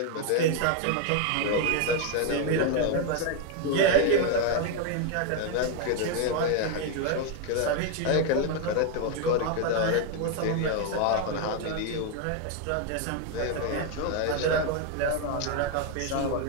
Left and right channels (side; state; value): both; different; correlation 0.01